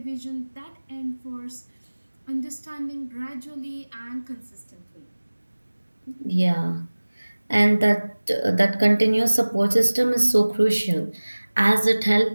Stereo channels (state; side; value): inverted; both; correlation -1.00